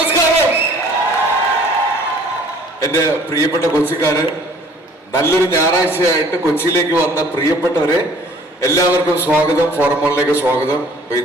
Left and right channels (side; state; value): both; normal; correlation 0.54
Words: എൻ്റെ പ്രിയപ്പെട്ട കൊച്ചിക്കാര്, നല്ലൊരു ഞായറാഴ്ചയായിട്ട് കൊച്ചിയിലേക്ക് വന്ന പ്രിയപ്പെട്ടവരെ എല്ലാവർക്കും സ്വാഗതം, ഫോറം മോളിലേക്ക് സ്വാഗതം.